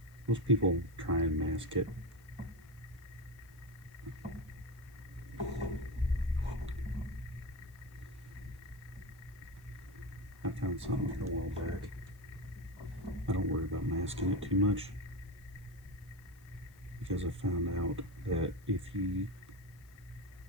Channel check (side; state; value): left; noise; hiss, 28 dB below the sound